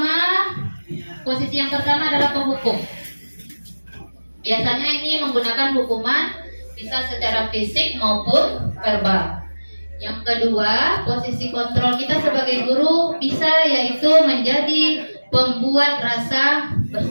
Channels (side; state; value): both; inverted; correlation -1.00